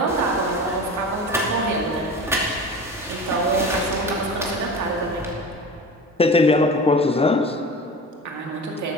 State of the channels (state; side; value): normal; both; correlation 0.33